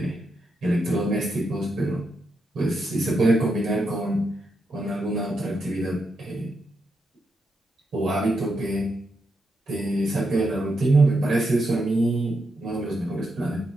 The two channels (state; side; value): normal; both; correlation 0.83